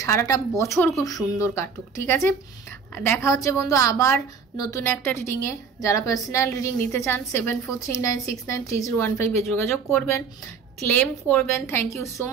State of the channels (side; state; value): left; quieter; 5.7 dB